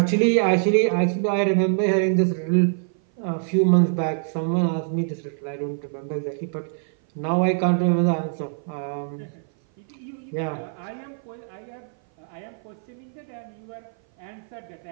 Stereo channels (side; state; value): left; silent; 57 dB below the other